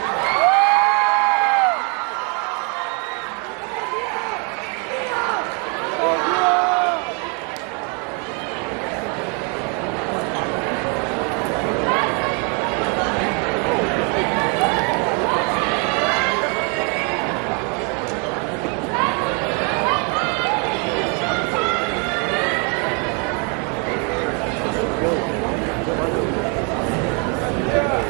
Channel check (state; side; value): quieter; left; 35.7 dB